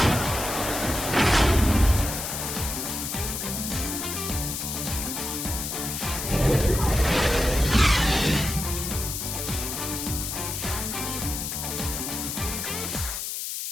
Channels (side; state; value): left; noise; hiss, 4 dB below the sound